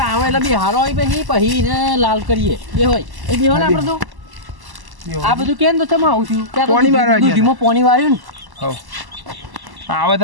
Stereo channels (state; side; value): late; left; 1.1 ms